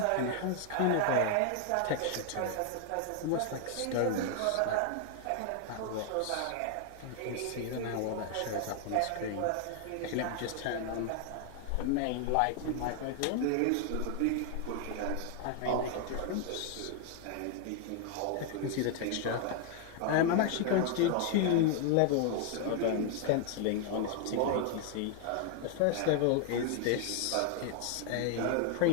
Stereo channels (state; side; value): different; both; correlation 0.00